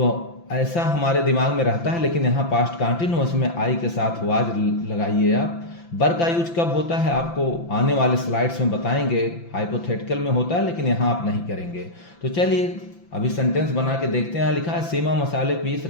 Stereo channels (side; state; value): right; late; 5.9 ms